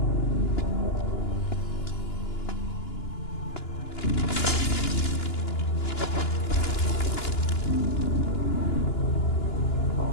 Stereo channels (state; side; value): late; right; 2.9 ms